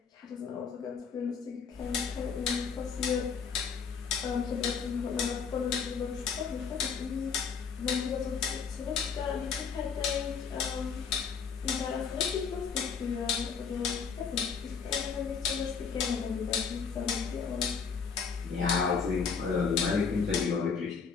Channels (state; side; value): quieter; right; 6.0 dB